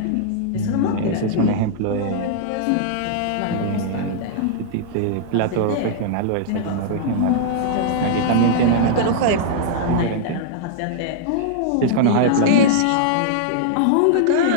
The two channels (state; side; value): different; both; correlation -0.02